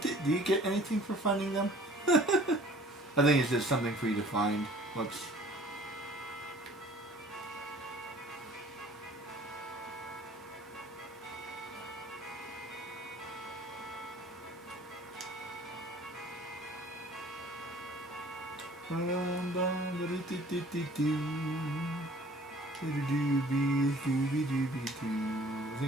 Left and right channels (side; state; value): both; normal; correlation 0.51